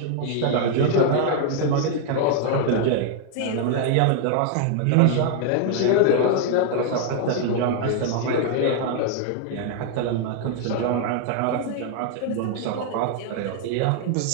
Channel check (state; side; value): different; both; correlation 0.00